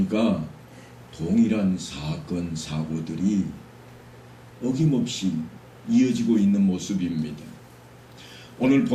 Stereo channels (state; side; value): identical; both; correlation 1.00